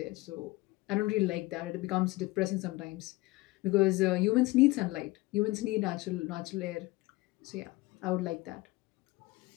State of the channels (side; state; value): right; quieter; 21.0 dB